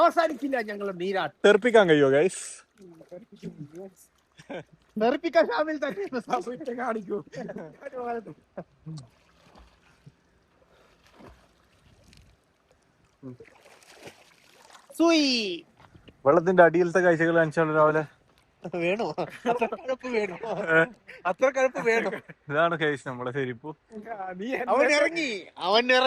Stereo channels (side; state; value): both; identical; correlation 1.00